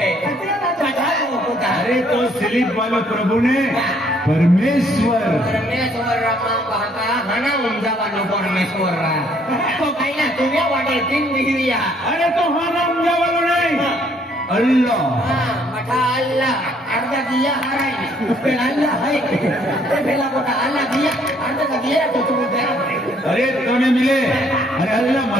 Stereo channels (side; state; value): both; normal; correlation 0.65